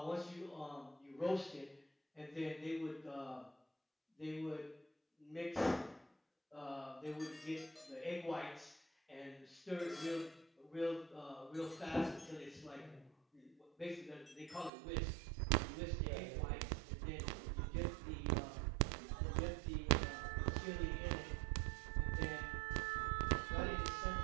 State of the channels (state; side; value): drops out; left; at 14.7 s